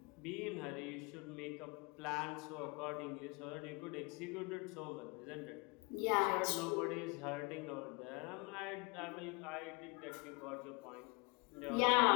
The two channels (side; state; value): right; quieter; 28.0 dB